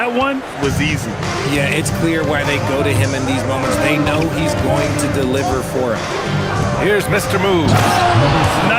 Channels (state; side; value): identical; both; correlation 1.00